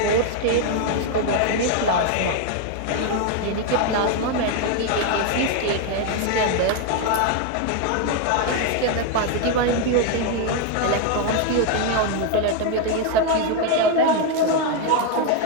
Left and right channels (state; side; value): different; both; correlation 0.01